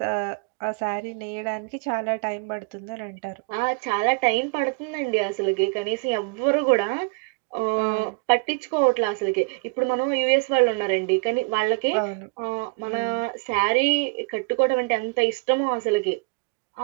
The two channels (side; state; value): left; quieter; 32.9 dB